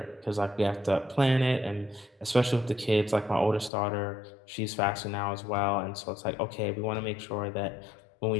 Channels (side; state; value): right; drops out; at 3.7 s